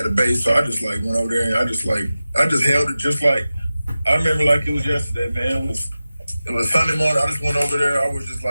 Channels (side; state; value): both; inverted; correlation -0.95